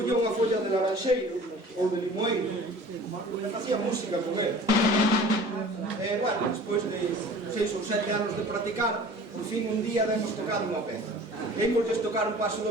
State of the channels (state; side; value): normal; both; correlation 0.44